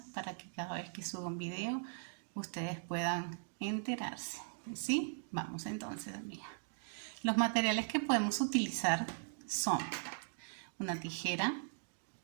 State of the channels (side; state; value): left; silent; digital silence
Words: para que cada vez que suba un video ustedes puedan enterarse. ¿Sí? Vamos entonces, amiga. Los materiales que podemos utilizar son una tijera,